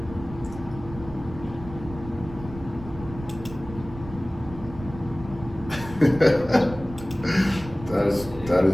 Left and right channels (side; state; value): right; noise; rumble, 14 dB below the sound